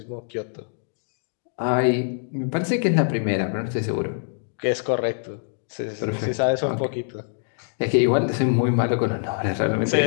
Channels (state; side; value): silent; right; 62 dB below the other